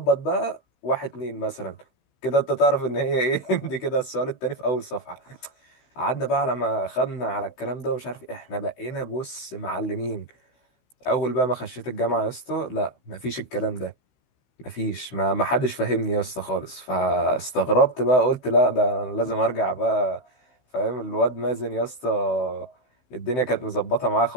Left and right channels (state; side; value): late; right; 16 ms